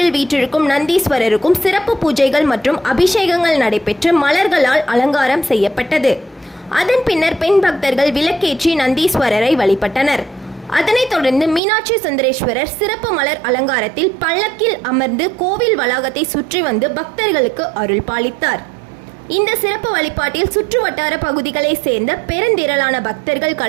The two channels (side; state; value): left; drops out; at 11.6 s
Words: வீற்றிருக்கும் நந்தீஸ்வரருக்கும் சிறப்பு பூஜைகள் மற்றும் அபிஷேகங்கள் நடைபெற்று மலர்களால் அலங்காரம் செய்யப்பட்டது. அதன் பின்னர் பெண் பக்தர்கள் விளக்கேற்றி நந்தீஸ்வரரை வழிபட்டனர். அதனைத் தொடர்ந்து மீனாட்சி சுந்தரேஸ்வரர் சிறப்பு மலர் அலங்காரத்தில் பல்லக்கில் அமர்ந்து கோவில் வளாகத்தை சுற்றி வந்து பக்தர்களுக்கு அருள் பாலித்தார். இந்த சிறப்பு வழிபாட்டில் சுற்று வட்டார பகுதிகளை சேர்ந்த பெருந்திரளான பக்தர்கள்